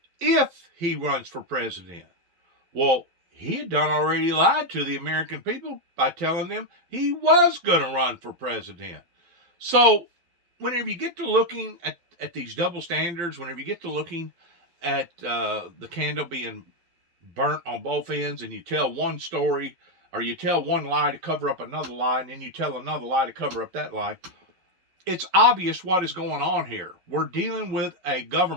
if he runs for president? Well, he had done already lied to the American people by telling them he was going to run for president. So whenever you get to looking at these double standards, whenever you get to looking at the candle being burnt on both ends, and you tell one story, or you tell one lie to cover up another lie, and then you tell another lie to cover up that lie, it's obvious what is going on here. We're dealing with a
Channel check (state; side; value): late; left; 12 ms